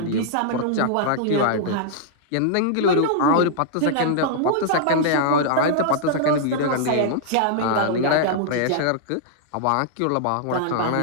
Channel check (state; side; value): different; both; correlation -0.01